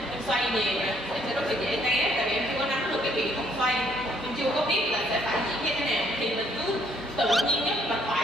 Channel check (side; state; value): both; normal; correlation 0.66